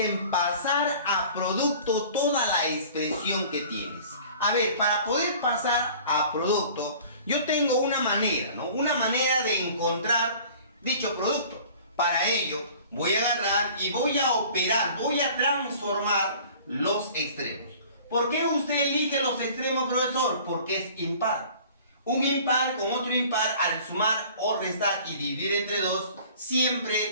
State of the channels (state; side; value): inverted; both; correlation -0.47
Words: pasar a producto toda la expresión que tienes. A ver, para poder pasar a producto, yo tengo una manera, ¿no? Una manera de encontrar dicho producto. Para ello, voy a agarrar y voy a operar, voy a transformar los extremos. ¿Por qué usted elige los extremos, profesor? Porque es impar. Un impar con otro impar, al sumar o restar y dividir entre 2,